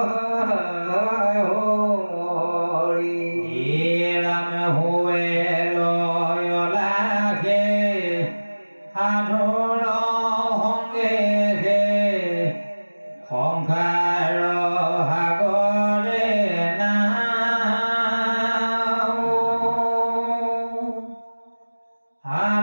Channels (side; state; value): both; inverted; correlation -1.00